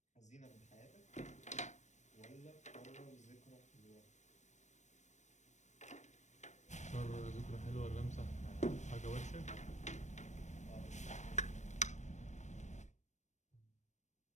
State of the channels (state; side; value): late; right; 0.34 ms